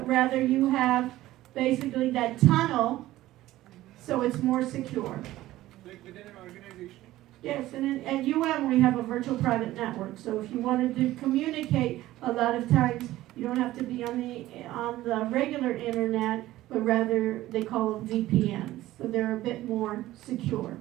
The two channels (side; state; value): left; quieter; 15.7 dB